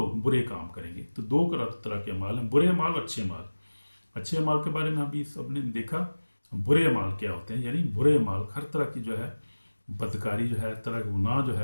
برے کام کریں گے، تو دو طرح کے اعمال ہیں، برے اعمال اور اچھے اعمال۔ اچھے اعمال کے بارے میں ابھی سب نے دیکھا، برے اعمال کیا ہوتے ہیں، یعنی برے اعمال ہر طرح کی جو ہے بدکاری جو ہے، ہر طرح کا گناہ جو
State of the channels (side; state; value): both; inverted; correlation -1.00